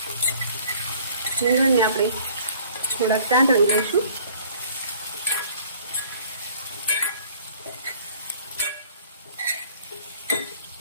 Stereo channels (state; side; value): inverted; both; correlation -0.54